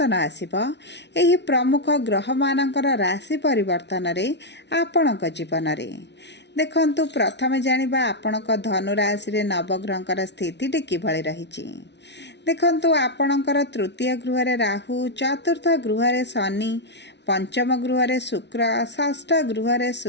आसिबो एही प्रमुख ग्रह मानकर राशि परिवर्तन रे आपणक जीवन रे। देखंतु प्रथमे जानिबा आपणक धनु राशि रे नवग्रहंकर स्थिति किभଳି रहिछि। देखंतु आपणकर तृतीय गृह रे राहु, चतुर्थ गृह रे शनि, पंचम गृह रे शुक्र, षष्ठ गृह रे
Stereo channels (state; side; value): late; right; 0.50 ms